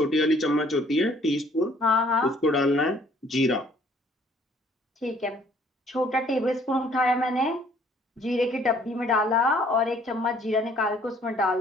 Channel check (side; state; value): both; normal; correlation 0.60